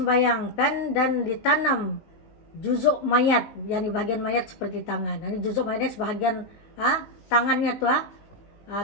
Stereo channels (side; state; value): right; late; 19 ms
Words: dan ditanam juzuk mayat, yakni bagian mayat seperti tangan. Ini juzuk mayatnya sebahagian tangannya tuh,